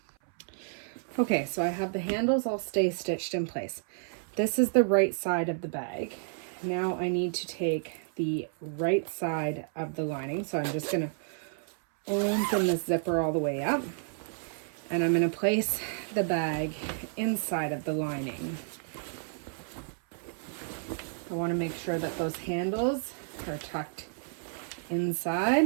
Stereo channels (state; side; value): silent; left; 57 dB below the other